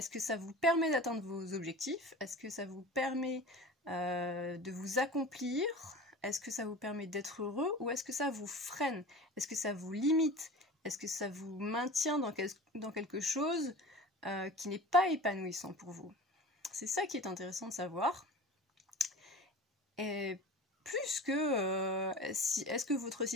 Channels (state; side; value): normal; both; correlation 0.36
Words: que ça vous permet d'atteindre vos objectifs? Est-ce que ça vous permet de vous accomplir? Est-ce que ça vous permet d'être heureux? Ou est-ce que ça vous freine? Est-ce que ça vous limite? Est-ce que ça vous maintient dans quelque chose qui n'est pas épanouissant pour vous? C'est ça qui est intéressant de savoir. Et plus que est-ce que votre